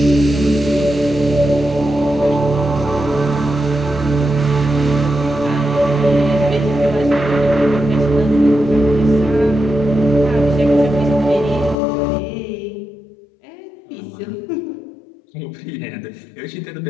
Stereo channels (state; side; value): drops out; right; at 11.8 s